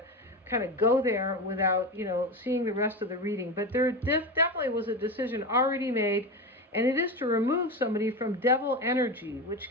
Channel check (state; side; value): normal; both; correlation 0.21